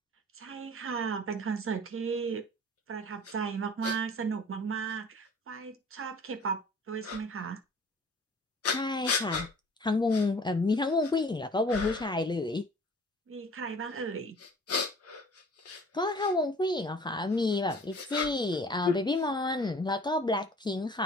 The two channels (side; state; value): both; normal; correlation 0.49